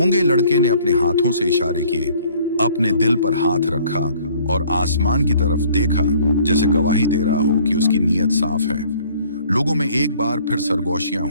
लड़के ने अपने हाथों से इशारे किए, अपने दिल पर हाथ रखा और आसमान की तरफ देखा, जैसे गवाही दे रहा हो कि उसकी नीयत साफ है। लोगों में एक बार फिर सरगोशियां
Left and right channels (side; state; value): both; inverted; correlation -0.57